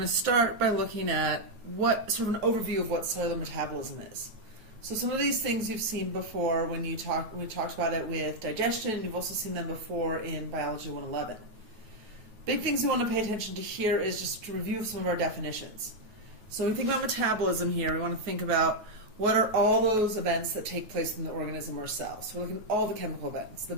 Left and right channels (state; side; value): late; left; 9.4 ms